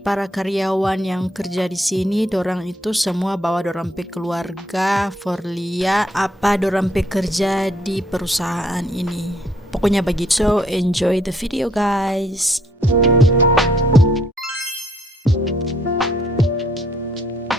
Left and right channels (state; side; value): normal; both; correlation 0.67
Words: para karyawan yang kerja di sini, dorang itu semua bawa dorang pe keluarga for liat apa dorang pe kerja di perusahaan ini. Pokoknya begitu. So enjoy the video guys.